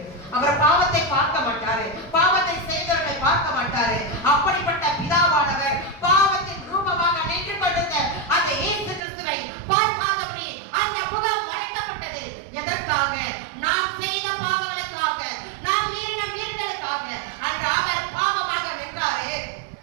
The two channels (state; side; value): drops out; left; at 9.0 s